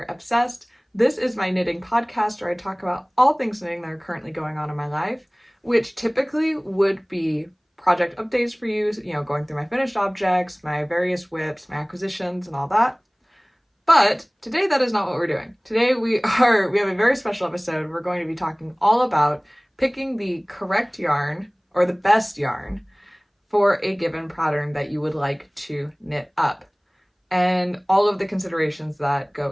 Obsessed. This is my knitting podcast where I talk about all things knitting that are currently going on in my life, which typically would be project updates for you, going through my finished objects, my various whips, my acquisitions, and all that. But today that is not what we're doing. Today we have a very special episode. We're going to be talking all about picking the correct yarn or the best yarn for a given pattern that you would like to knit up, and all of the considerations that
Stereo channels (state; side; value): identical; both; correlation 1.00